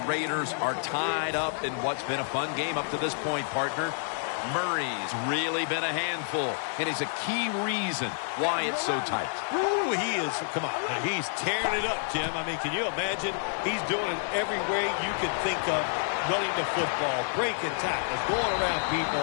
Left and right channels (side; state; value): right; silent; digital silence